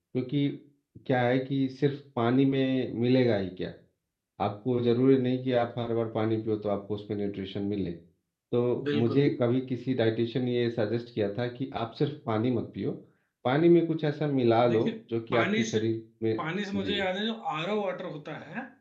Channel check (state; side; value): identical; both; correlation 1.00